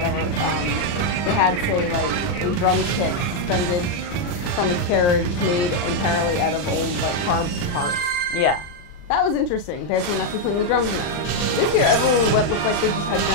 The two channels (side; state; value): right; late; 40 ms